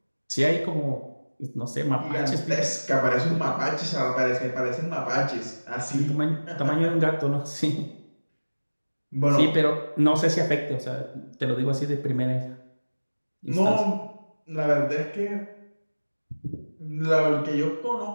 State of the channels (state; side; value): inverted; both; correlation -1.00